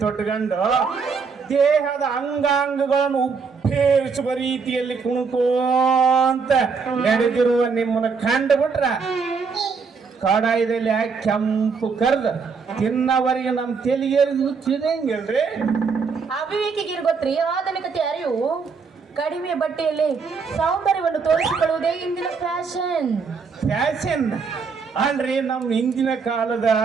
ತೊಟ್ಕೊಂಡು ದೇಹದ ಅಂಗಾಂಗಗಳನ್ನು ಉಪ್ಪೇರಿಸುವ ರೀತಿಯಲ್ಲಿ ಕುಣುಕೋಂತ ನಡೆದಿರುವ ನಿಮ್ಮನ್ನ ಕಂಡು ಬಿಟ್ರ ಕಡಾಯದಲ್ಲಿ ಹಾಕಿ ಕೆಂಪು ಕರ್ದ ತಿನ್ನವರಿಗೆ ನಮ್ಮ ತೆಲಿಗೇರಿದು ಹುಚ್ಚಿದಂಗಿಲ್ರಿ ಅವಿವೇಕಿಗೆ ಗೊತ್ತ್ರಿ ಆಧುನಿಕತೆ ಅರಿವು ಕಡಿಮೆ ಬಟ್ಟೆಯಲ್ಲಿ ಸೌಂದರ್ಯವನ್ನು ತೋರಿಸಿಕೊಳ್ಳುವುದೇ ಇಂದಿನ ಫ್ಯಾಷನ್ ಅಲ್ರಿ ನಮ್ಮ ಹಿಂದಿನ ಕಾಲದ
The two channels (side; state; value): left; quieter; 5.2 dB